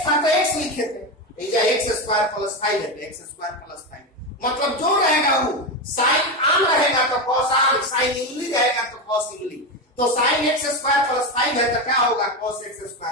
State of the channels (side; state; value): both; normal; correlation 0.15